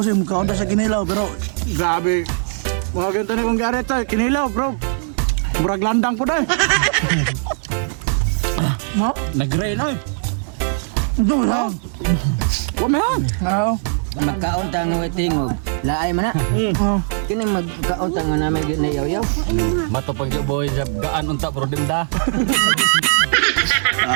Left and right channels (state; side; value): silent; left; digital silence